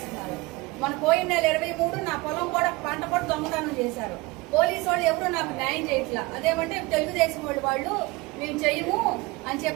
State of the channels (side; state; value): left; quieter; 22.7 dB